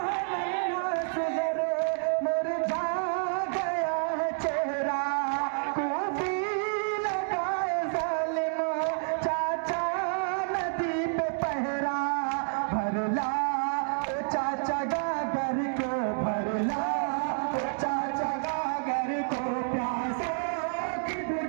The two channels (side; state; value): left; silent; digital silence